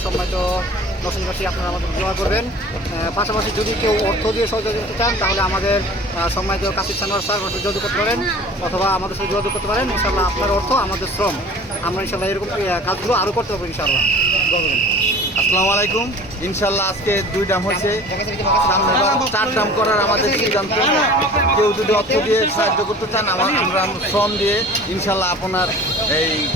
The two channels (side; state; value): both; normal; correlation 0.44